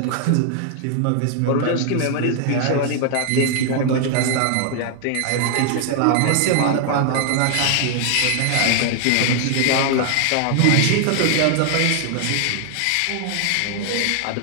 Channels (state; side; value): different; both; correlation 0.00